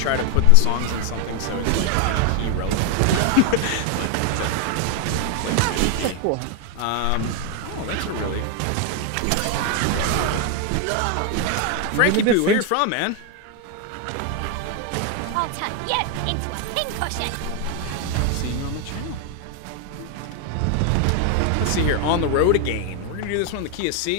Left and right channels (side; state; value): both; different; correlation 0.01